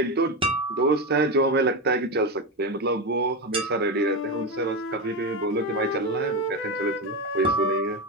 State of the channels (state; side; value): normal; both; correlation 0.15